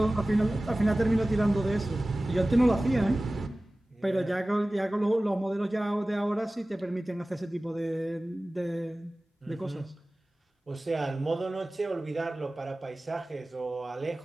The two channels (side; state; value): both; normal; correlation 0.97